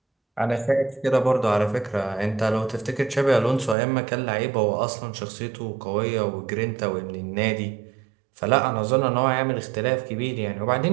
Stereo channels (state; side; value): drops out; left; at 3.8 s